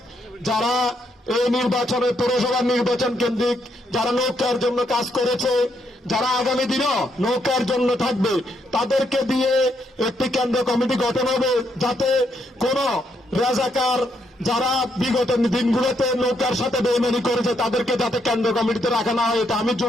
যারা এই নির্বাচনে পৌরসভা নির্বাচন কেন্দ্রিক যারা নৌকার জন্য কাজ করেছে, যারা আগামী দিনও নৌকার জন্য থাকবে, তাদেরকে দিয়ে একটি কেন্দ্রীয় কমিটি গঠন হবে, যাতে কোন রাজাকার যারা বিগত দিনগুলোতে নৌকার সাথে বেইমানি করেছে তাদেরকে যাতে কেন্দ্র কমিটিতে রাখা না হয়। এটা আমি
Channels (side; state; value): both; normal; correlation 0.76